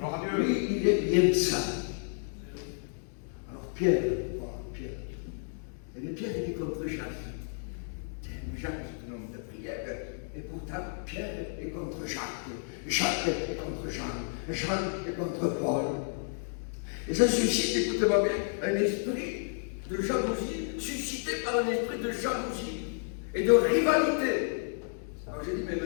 Lui, il aime ça. Alors Pierre. Et Pierre, il est contre Jacques. Jacques, c'est un homme de prière. Et pourtant, Pierre est contre Jacques. Jacques est contre Jean. Jean est contre Paul. Et ça suscite, écoutez-moi bien, un esprit de jalousie, suscité par un esprit de jalousie et de rivalité. Alors j'ai dit, mais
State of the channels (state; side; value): silent; right; digital silence